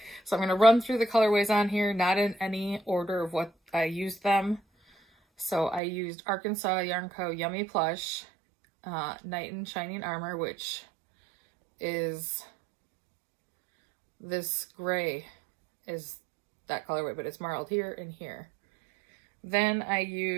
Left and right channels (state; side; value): drops out; left; at 5.8 s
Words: So I'm going to run through the colorways on here, not in any order of what I used them. So I used Arkansas Yarn Co. Yummy Plush, Knight in Shining Armor, which is this gray is that colorway, but it's marled here and here. Then I